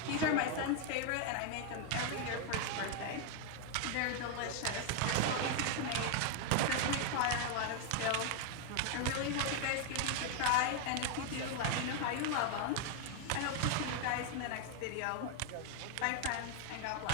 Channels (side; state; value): both; different; correlation 0.00